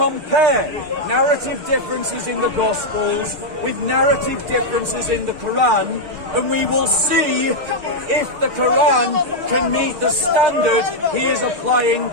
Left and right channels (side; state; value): left; late; 6.6 ms